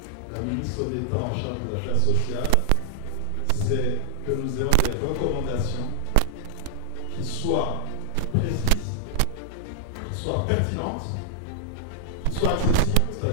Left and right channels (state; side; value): different; both; correlation 0.00